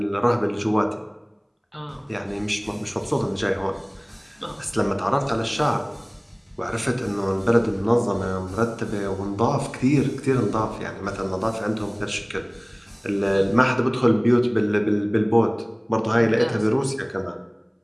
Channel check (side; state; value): both; identical; correlation 1.00